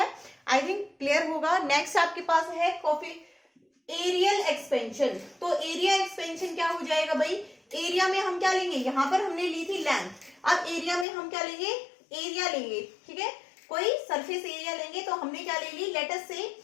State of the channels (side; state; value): right; drops out; at 11.1 s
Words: आई थिंक क्लियर होगा। नेक्स्ट आपके पास है एरियल एक्सपेंशन। तो एरिया एक्सपेंशन क्या हो जाएगा भाई, एरिया में हम क्या लेंगे, यहां पर हमने ली थी लेंथ, अब एरिया में हम क्या लेंगे, एरिया लेंगे, ठीक है। कोई सरफेस एरिया लेंगे, तो हमने क्या ले ली, लेट अस से